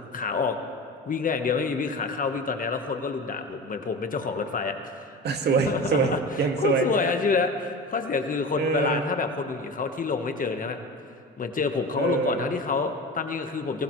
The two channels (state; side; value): normal; both; correlation 0.31